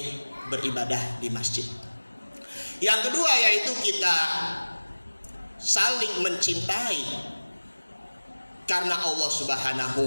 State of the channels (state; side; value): inverted; both; correlation -1.00